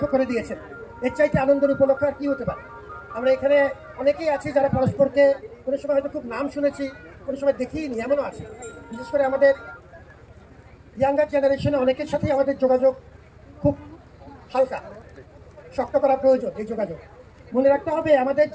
করে দিয়েছেন। এর চাইতে আনন্দের উপলক্ষ আর কি হতে পারে? আমরা এখানে অনেকেই আছি যারা পরস্পরকে কোনো সময় হয়তো খুব নাম শুনেছি, কোনো সময় দেখিনি, এমনও আছে। বিশেষ করে আমাদের ইয়াঙ্গার জেনারেশনে অনেকের সাথেই আমাদের যোগাযোগ খুব হালকা, শক্ত করা প্রয়োজন। এই যোগাযোগ মনে রাখতে হবে, আমাদের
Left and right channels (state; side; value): identical; both; correlation 1.00